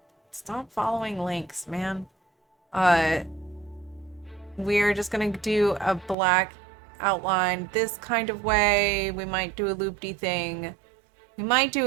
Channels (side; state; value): left; drops out; at 6.2 s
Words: Stop following links, man. We're just gonna do a black outline this kind of way. We might do a loop-de thing. We might